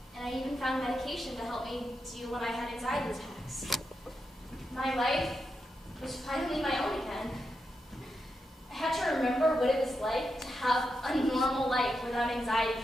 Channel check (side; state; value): both; normal; correlation 0.86